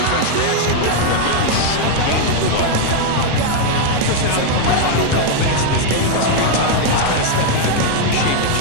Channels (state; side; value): different; both; correlation 0.00